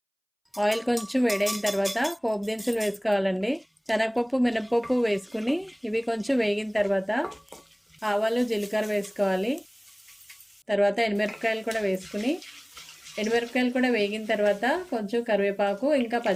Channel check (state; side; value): identical; both; correlation 1.00